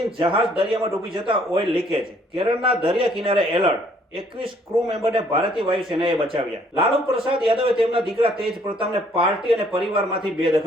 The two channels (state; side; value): normal; both; correlation 0.63